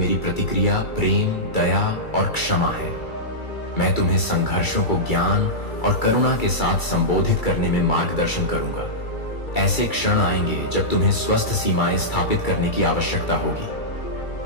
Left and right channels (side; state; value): right; late; 2.3 ms